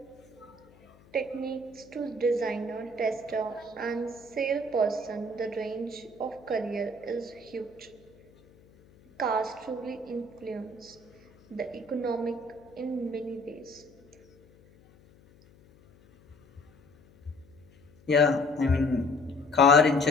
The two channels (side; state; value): left; noise; hum, 27 dB below the sound